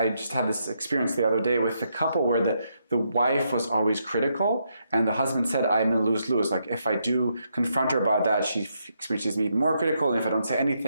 just had this experience the other day with a couple where the wife was always critical and the husband said, I'm in lose-lose. Like if I do confront her about that, she experiences me even more critical. And if I don't say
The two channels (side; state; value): both; inverted; correlation -0.79